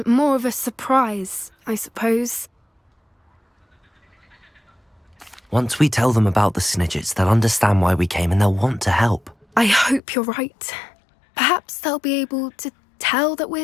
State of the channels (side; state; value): right; drops out; at 10.0 s